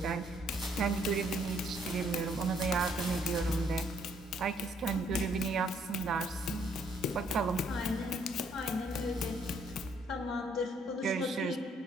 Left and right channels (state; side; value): normal; both; correlation 0.67